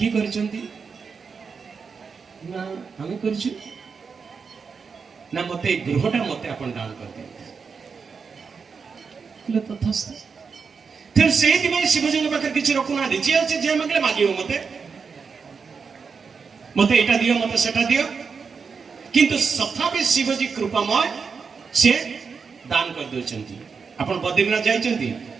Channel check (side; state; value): left; quieter; 5.5 dB